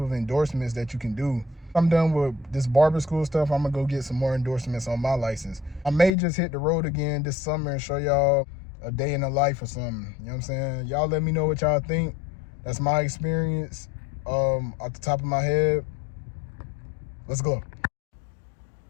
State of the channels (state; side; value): drops out; right; at 6.1 s